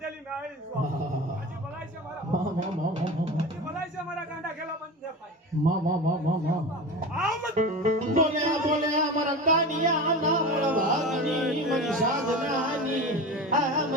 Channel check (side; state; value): both; normal; correlation 0.29